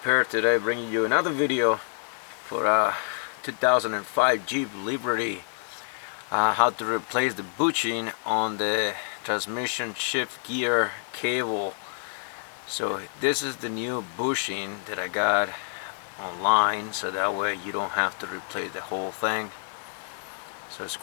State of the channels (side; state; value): right; silent; digital silence